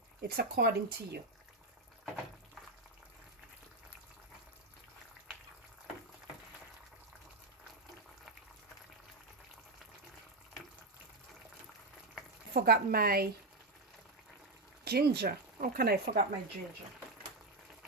it's according to you. Forgot my ginger. How can I forget my ginger?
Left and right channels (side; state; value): left; quieter; 3.0 dB